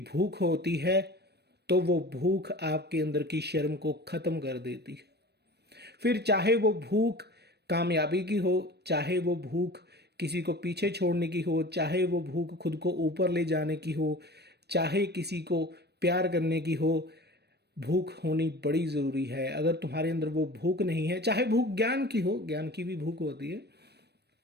भूख होती है तो वो भूख आपके अंदर की शर्म को ख़त्म कर देती है। फिर चाहे वो भूख कामयाबी की हो, चाहे वो भूख किसी को पीछे छोड़ने की हो, चाहे वो भूख खुद को ऊपर ले जाने की हो, चाहे किसी को प्यार करने की हो, भूख होनी बड़ी ज़रूरी है। अगर तुम्हारे अंदर वो भूख नहीं है, चाहे भूख ज्ञान की हो, ज्ञान की भी भूख होती है,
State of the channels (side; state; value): left; late; 0.48 ms